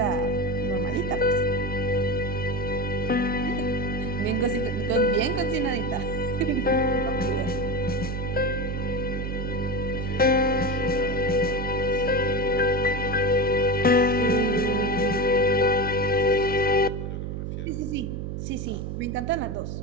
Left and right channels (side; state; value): right; noise; hum, 4 dB below the sound